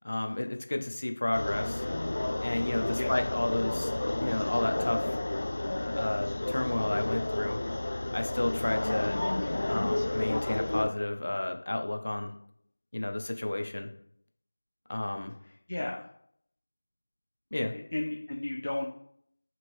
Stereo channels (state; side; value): inverted; both; correlation -1.00